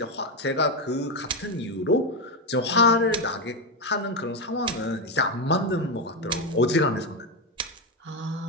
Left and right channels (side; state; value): both; normal; correlation 0.09